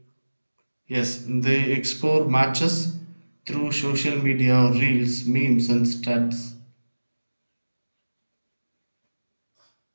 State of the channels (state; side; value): inverted; both; correlation -1.00